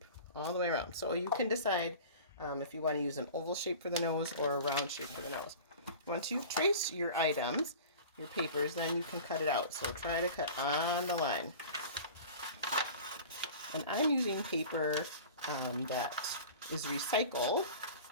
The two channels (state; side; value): inverted; both; correlation -0.38